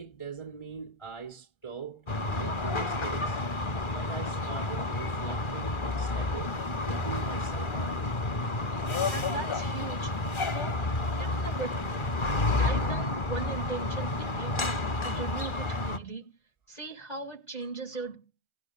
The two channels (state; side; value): late; right; 1.4 ms